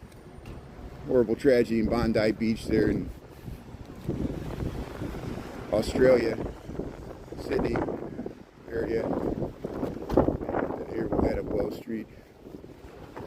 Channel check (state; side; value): identical; both; correlation 1.00